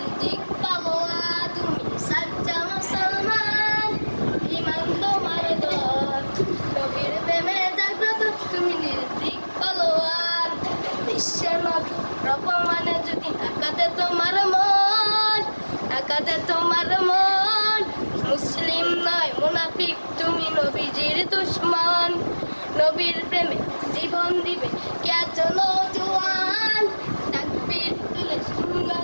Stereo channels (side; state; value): both; inverted; correlation -1.00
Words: পাগোয়া তুমি সচ্চা মুসলমান ইমান তোমার তর নবীর প্রেমে জাগ্রত তুমি নির্দিক পাগোয়ান বিশ্বের নবী রকমানে যদি আকাতে তোমার মন আকাতে তোমার মন মুসলিম নয় মুনাফিক তুমি নবীজির দুশ্মন নবীর প্রেমে জীবন দিবে কেতন জওয়ান তাকবীর তুলে